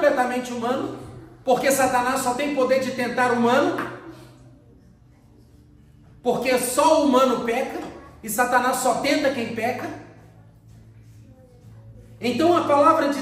humano, porque Satanás só tem poder de tentar humano, porque só o humano peca, e Satanás só tenta quem peca. Então a palavra de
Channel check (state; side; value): identical; both; correlation 1.00